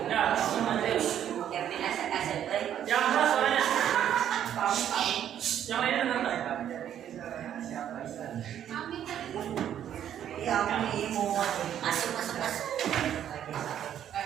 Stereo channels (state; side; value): quieter; left; 10.2 dB